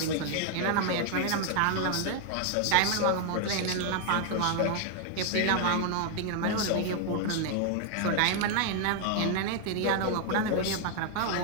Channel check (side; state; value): both; different; correlation 0.00